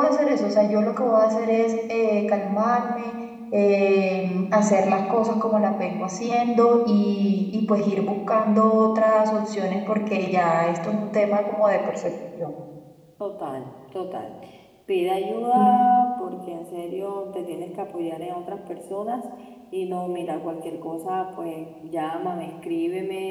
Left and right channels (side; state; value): both; identical; correlation 1.00